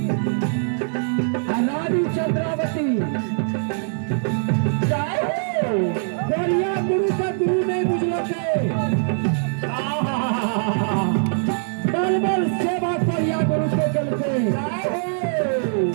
रानी चंद्रावती बढ़िया गुरु का गुरु नहीं बुझलो के बल बल सेवा बढ़िया गुरु के चलते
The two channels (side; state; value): left; silent; digital silence